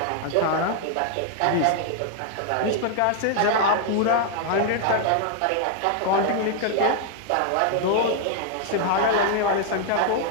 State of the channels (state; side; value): different; both; correlation 0.00